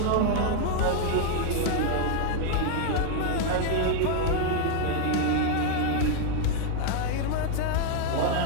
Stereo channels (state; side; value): different; both; correlation 0.00